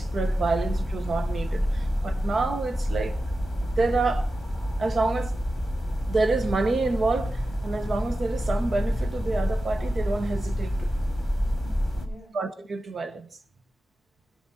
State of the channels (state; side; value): normal; both; correlation 0.93